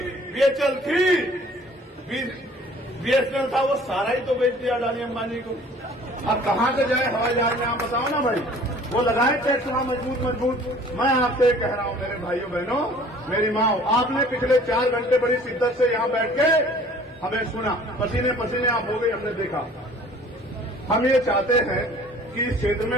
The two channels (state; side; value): normal; both; correlation 0.51